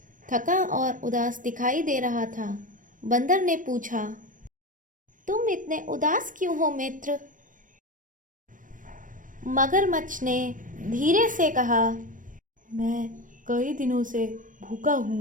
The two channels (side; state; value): left; late; 0.38 ms